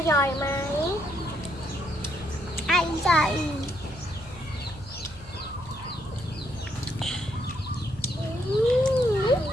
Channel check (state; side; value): noise; right; hum, 18 dB below the sound